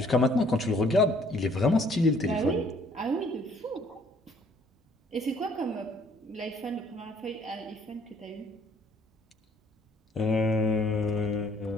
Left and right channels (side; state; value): both; normal; correlation 0.61